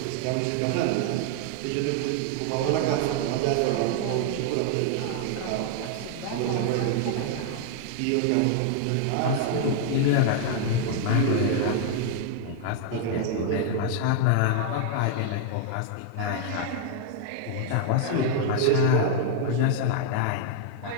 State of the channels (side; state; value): both; different; correlation 0.00